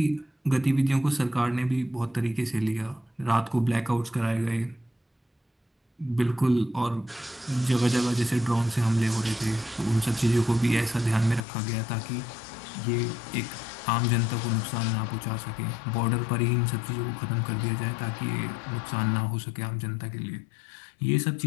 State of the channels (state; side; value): drops out; right; at 11.4 s